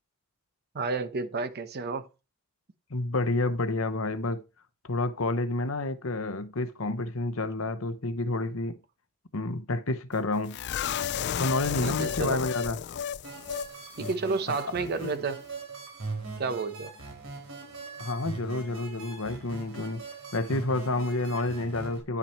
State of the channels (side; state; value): both; normal; correlation 0.19